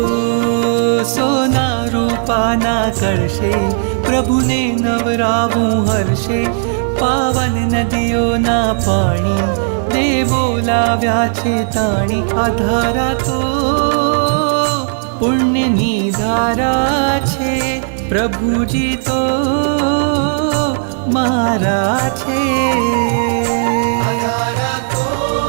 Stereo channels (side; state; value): left; silent; digital silence